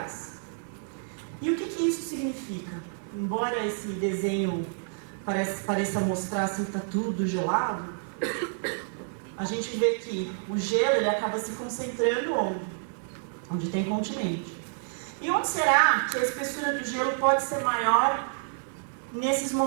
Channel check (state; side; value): silent; left; digital silence